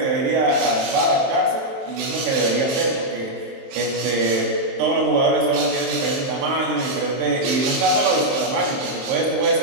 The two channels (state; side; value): late; left; 23 ms